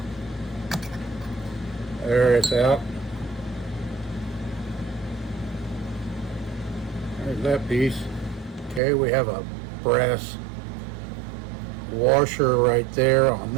There, it's out. There's that piece. Okay, we have a brass washer right there on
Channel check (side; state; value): left; drops out; at 8.8 s